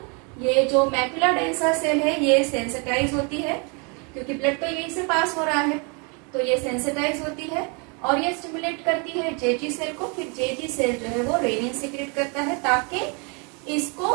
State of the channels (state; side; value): quieter; left; 34.1 dB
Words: ये जो मैक्यूला डेंसा सेल है ये सेंसिटाइज होती है, क्योंकि ब्लड तो यहीं से पास हो रहा है, तो ये सेंसिटाइज होती है और ये स्टिमुलेट करती है जेजी सेल को. फिर जेजी सेल जो है वो रेनिन सीक्रेट करता है ताकि इसको